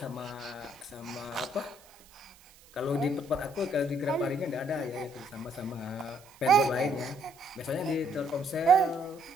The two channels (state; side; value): noise; right; hiss, 25 dB below the sound